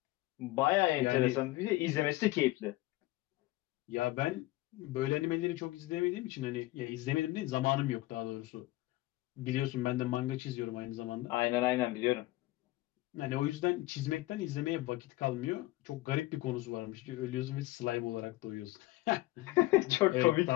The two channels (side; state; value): right; quieter; 18.7 dB